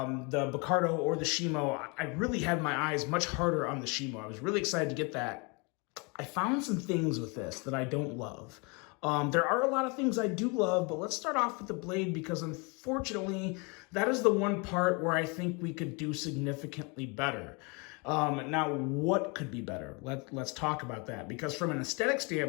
or the Shima, I really had my eyes much harder on the Shima. I was really excited to get that. I found some things with this that I don't love. There are a lot of things I do love, but let's start off with the blade because unfortunately, that is the one part where I think we could do significantly better. Now, what could be better? Let's talk about that because from an aesthetic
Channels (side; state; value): right; quieter; 30.6 dB